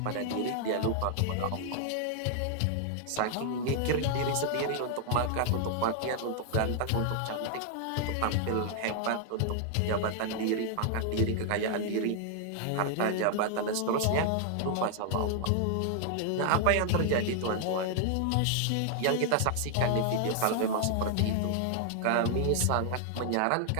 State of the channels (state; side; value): different; both; correlation 0.00